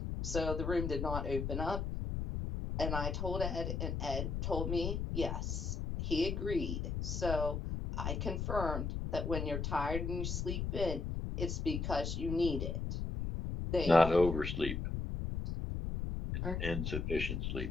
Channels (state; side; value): noise; left; rumble, 2 dB below the sound